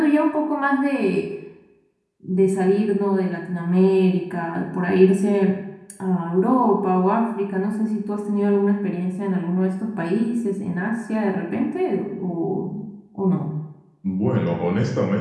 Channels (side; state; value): both; identical; correlation 1.00